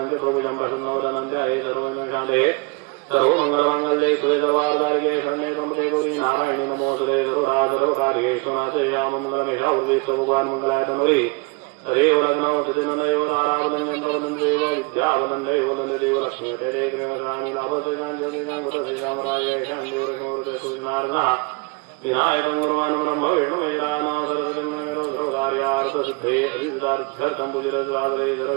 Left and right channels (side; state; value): left; quieter; 29.1 dB